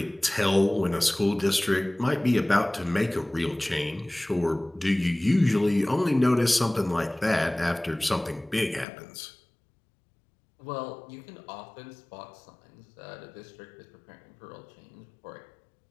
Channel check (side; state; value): right; drops out; at 8.8 s